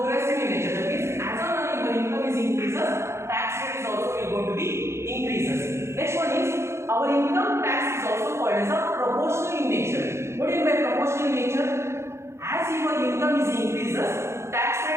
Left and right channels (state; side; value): late; left; 0.13 ms